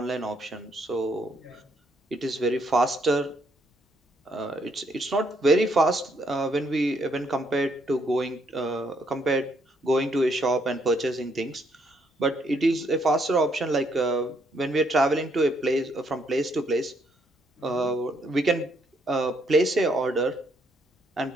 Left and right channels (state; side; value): normal; both; correlation 0.72